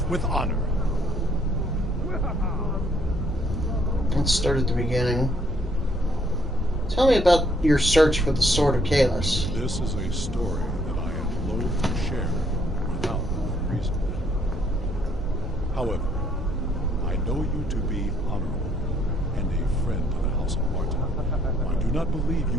with honor. Let's start at the beginning. Tell me about your search for the Sword of Kalis. This is a story that I am loath to share without reason. However, I know you to be honorable and a friend to the House of Martin. I do not believe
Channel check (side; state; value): both; normal; correlation 0.67